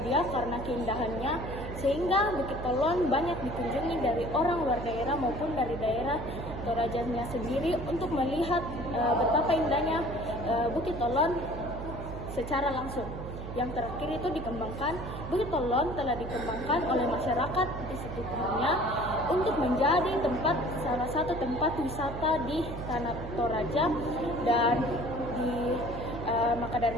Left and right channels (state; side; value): noise; right; hum, 8 dB below the sound